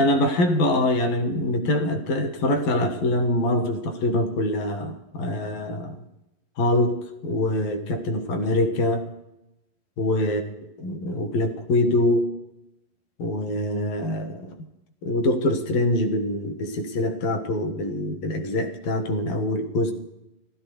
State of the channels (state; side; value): late; right; 11 ms